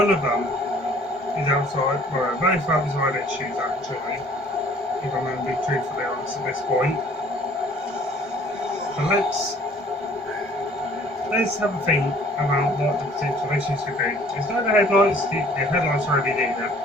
of them is outside, well both outside issues actually, if I'm going to be truthfully honest at this point. But let's have a think about what the potential issues could be. It's not the headlights, the headlights are LED, they're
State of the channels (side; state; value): both; normal; correlation 0.55